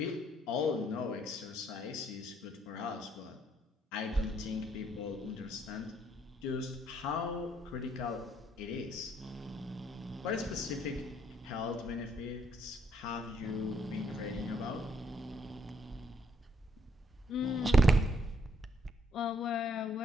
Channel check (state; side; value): normal; both; correlation 0.70